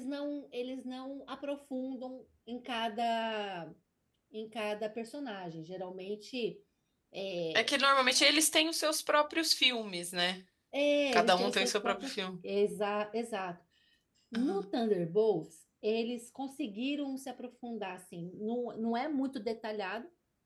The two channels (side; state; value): both; identical; correlation 1.00